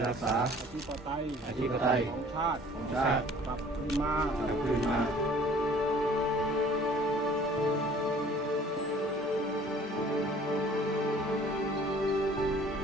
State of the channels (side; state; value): both; normal; correlation 0.52